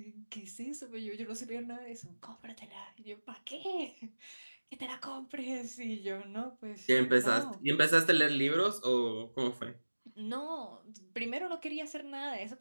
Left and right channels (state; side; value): inverted; both; correlation -1.00